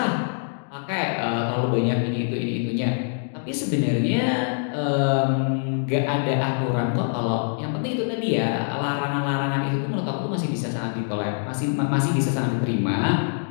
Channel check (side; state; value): right; silent; digital silence